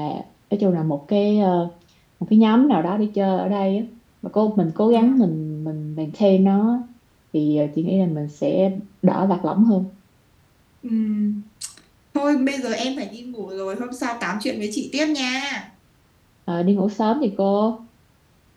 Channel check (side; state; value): both; identical; correlation 1.00